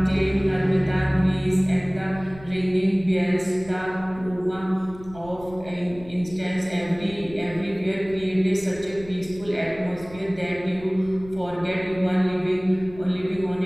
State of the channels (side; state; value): left; noise; rumble, 18 dB below the sound